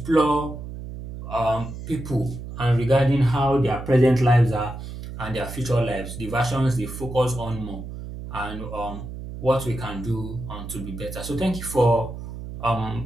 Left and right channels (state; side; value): noise; right; hum, 10 dB below the sound